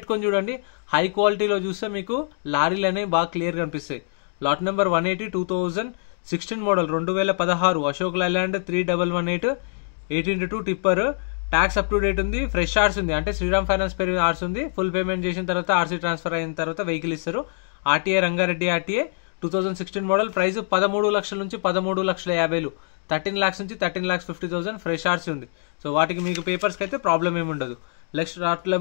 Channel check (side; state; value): right; silent; digital silence